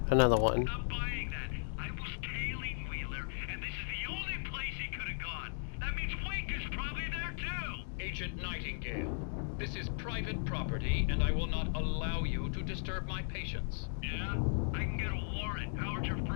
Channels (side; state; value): right; silent; digital silence